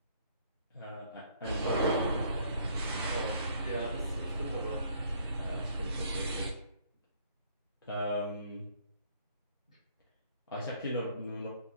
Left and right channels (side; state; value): both; inverted; correlation -0.63